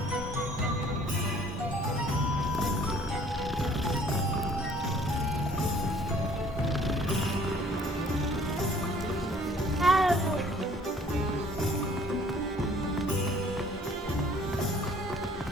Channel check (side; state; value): both; normal; correlation 0.56